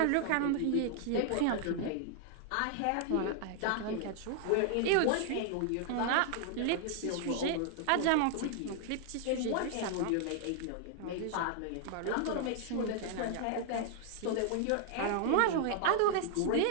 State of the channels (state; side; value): different; both; correlation 0.00